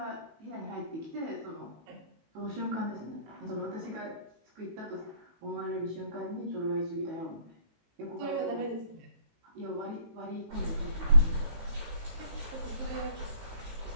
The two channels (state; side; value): late; left; 18 ms